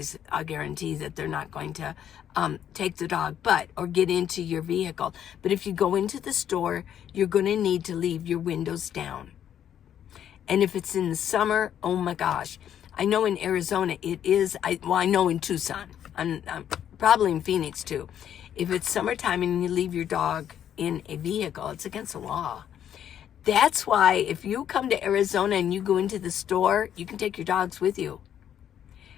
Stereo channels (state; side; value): quieter; right; 9.9 dB